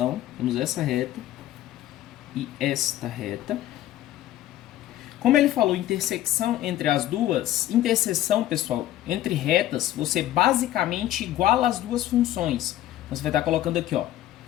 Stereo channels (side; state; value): right; quieter; 13.4 dB